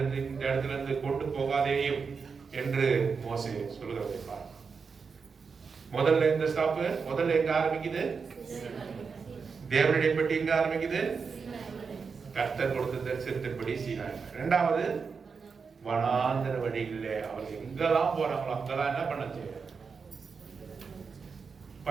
இந்த இடத்துல இருந்து கொண்டு போகாதேயும் என்று மோசே சொல்லுகிறதை பாருங்க. முதல்ல இந்த ஸ்டாப்பு, முதல்ல எங்க ஆரம்பிக்குது? தேவனுடைய பெட்டி எங்க ஆரம்பிக்குது? கர்த்தர் கொடுத்த தரிசனத்தின்படி சீனாய். இரண்டாவது, வனாந்தர வழிகளிலே அவர்கள் எங்கெல்லாம் போறாங்களோ அங்கெல்லாம் என்ன பண்ணுச்சு?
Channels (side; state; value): left; quieter; 5.4 dB